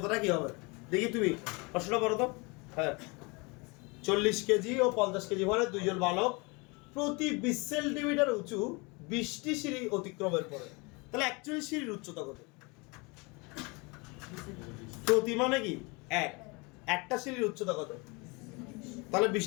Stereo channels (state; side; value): quieter; right; 28.2 dB